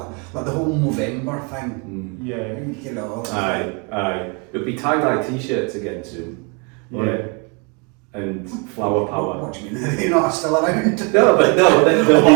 like the whole November thing. Aye. It'll be tie-dye t-shirts again soon. Yeah. And flower power. What do you mean? They're not still around? That's what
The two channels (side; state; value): left; quieter; 33.3 dB